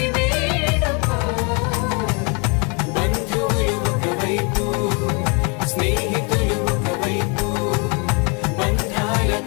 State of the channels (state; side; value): quieter; right; 33.1 dB